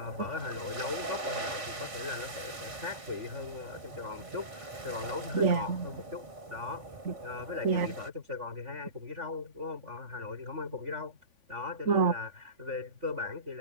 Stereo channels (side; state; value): left; late; 3.5 ms